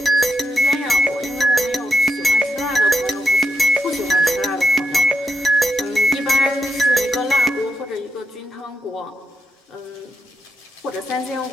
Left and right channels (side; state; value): both; normal; correlation 0.81